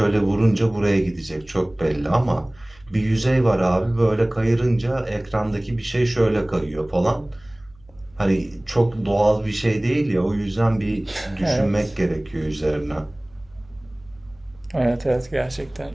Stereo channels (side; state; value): right; noise; hum, 29 dB below the sound